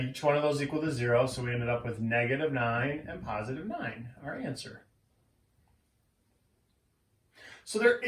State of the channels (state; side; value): identical; both; correlation 1.00